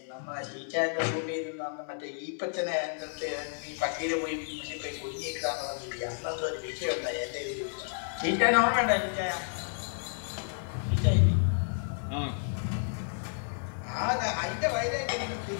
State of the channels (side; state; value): right; silent; 57 dB below the other